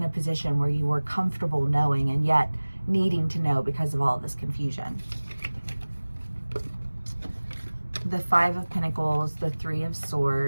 a position where you were comfortable knowing and yet needing to know because of all of this confusion. The Five of Pentacles, the Three of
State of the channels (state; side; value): inverted; both; correlation -1.00